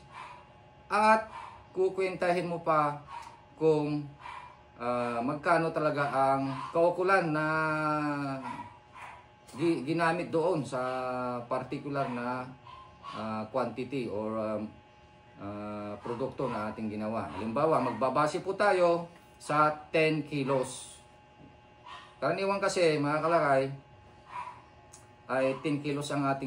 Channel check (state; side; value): identical; both; correlation 1.00